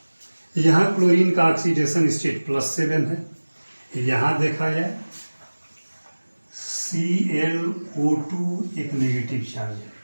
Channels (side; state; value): both; inverted; correlation -1.00